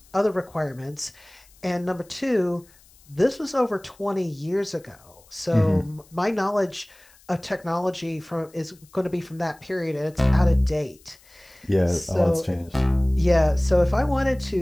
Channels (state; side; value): noise; left; hiss, 28 dB below the sound